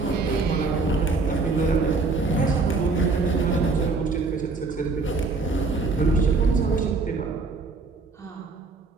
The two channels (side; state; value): left; quieter; 3.9 dB